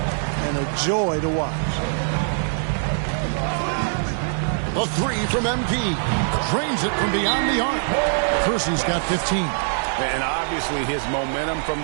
a joy to watch. A 3 from MP. Drains it from beyond the arc. Kersey's got 15. And obviously his momentum from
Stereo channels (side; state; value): left; silent; digital silence